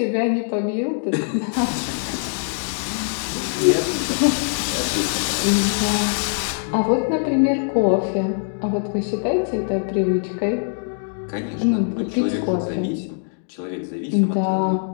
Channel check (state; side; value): silent; right; digital silence